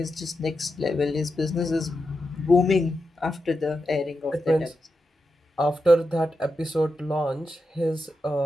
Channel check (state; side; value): normal; both; correlation 0.88